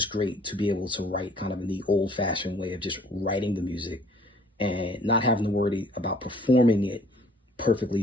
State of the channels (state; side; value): normal; both; correlation 0.57